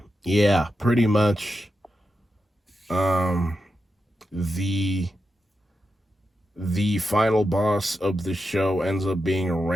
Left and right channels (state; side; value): normal; both; correlation 0.88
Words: yeah, pretty much the final boss of the show ends up being a